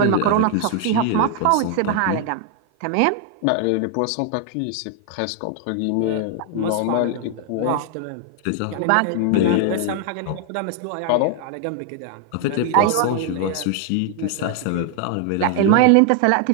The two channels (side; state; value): both; different; correlation 0.00